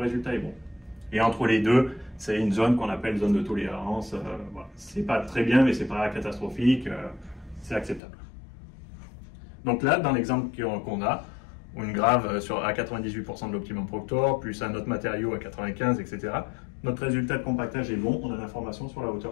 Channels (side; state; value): right; drops out; at 8.0 s